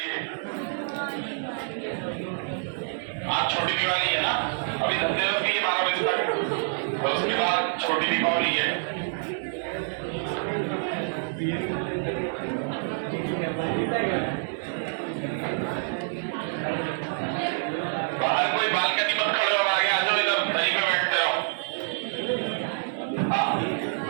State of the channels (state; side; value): silent; left; 60 dB below the other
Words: आज छोटी दिवाली है ना, अभी धनतेरस भी है 12 बजे तक, और उसके बाद छोटी दीपावली है। बाहर कोई बालकनी मत खड़े हो, आगे आ जाओ, इधर दरी पे बैठते रहो। हाँ,